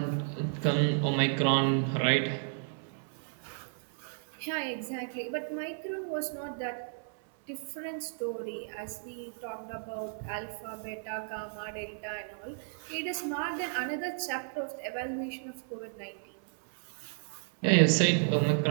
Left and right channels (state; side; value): silent; left; 56 dB below the other